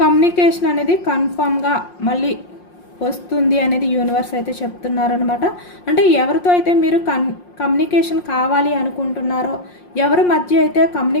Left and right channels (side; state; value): right; late; 5.6 ms